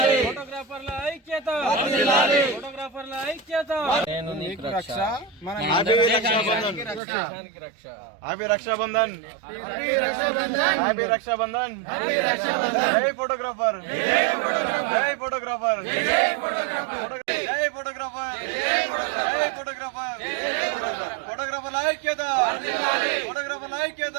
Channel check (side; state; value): left; drops out; at 7.0 s